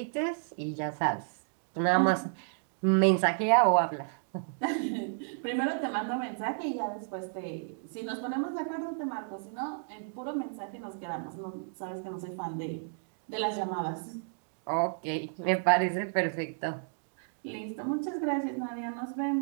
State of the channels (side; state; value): left; silent; digital silence